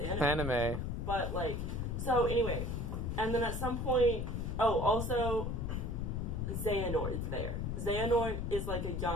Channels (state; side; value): noise; left; rumble, 2 dB below the sound